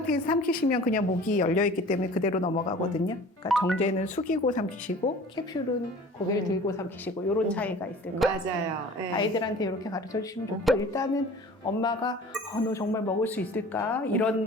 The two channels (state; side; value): normal; both; correlation 0.44